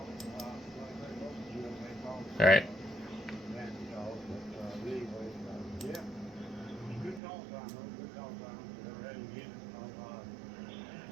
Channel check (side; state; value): left; drops out; at 7.2 s